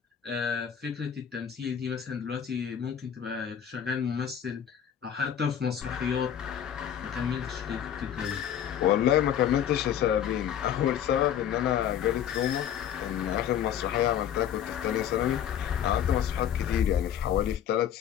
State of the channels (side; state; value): right; quieter; 9.5 dB